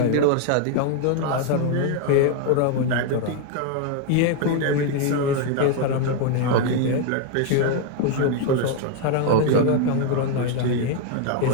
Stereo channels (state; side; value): different; both; correlation 0.01